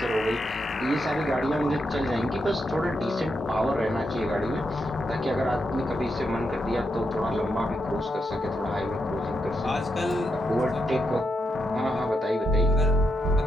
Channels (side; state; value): both; normal; correlation 0.82